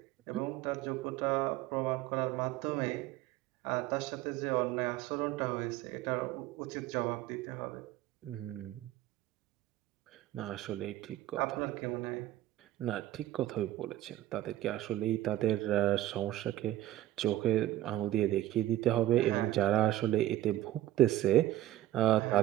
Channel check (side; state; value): left; quieter; 14.2 dB